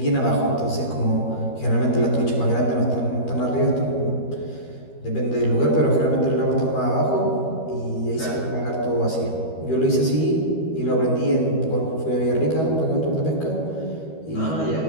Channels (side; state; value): right; late; 13 ms